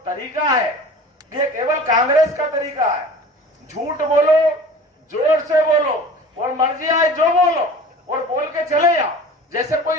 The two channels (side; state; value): both; normal; correlation 0.41